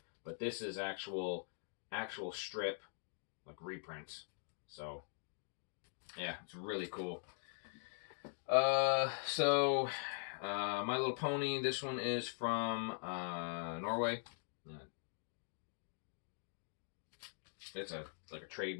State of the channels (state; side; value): silent; right; digital silence